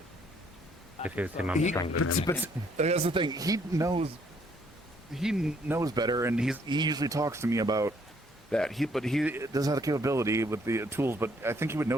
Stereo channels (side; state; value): both; normal; correlation 0.66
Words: If it's him, I'm He, strangling him. but that's the thing. He knows better, and he usually talks to me about that. But he does have the capability with the tools. But I think he would